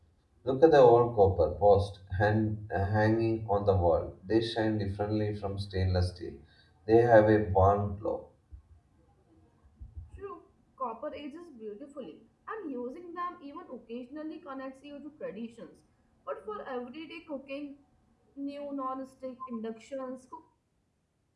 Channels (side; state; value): both; identical; correlation 1.00